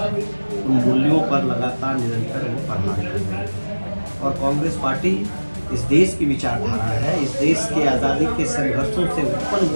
उन मूल्यों पर लगातार निरंतर वो प्रहार कर रहे हैं। और कांग्रेस पार्टी इस देश की विचारधारा है, इस देश के आज़ादी के संघर्षों से उत्पन्न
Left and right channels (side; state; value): both; inverted; correlation -1.00